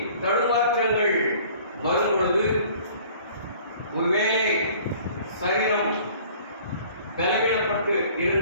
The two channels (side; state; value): both; inverted; correlation -0.52